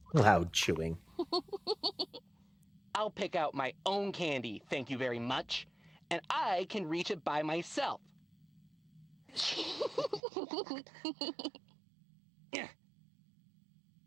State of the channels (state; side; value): drops out; left; at 10.2 s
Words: Loud chewing. I'll pick out my own candy, thank you very much. And I can reach it by myself.